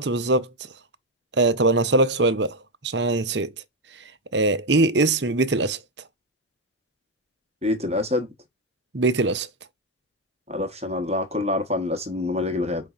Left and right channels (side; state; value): both; normal; correlation 0.08